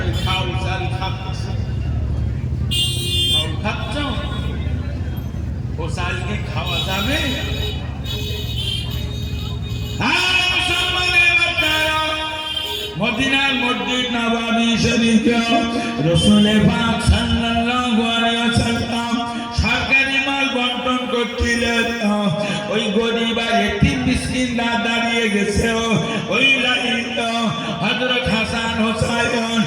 ওই খাউল চাল খাচ্ছে। খাউল খাচ্ছ, ও চালকে খাওয়া যাবে? মদিনার মসজিদ নববী শরীফে রাসূল পাক সাল্লাল্লাহু আলাইহি ওয়াসাল্লাম সরকারি মাল বন্টন করছিলেন। ওই গরিব আর এতিম মিসকিনরা দাঁড়িয়ে গেছে ওই লাইনে। হযরত হাসান হোসেন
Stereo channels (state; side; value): identical; both; correlation 1.00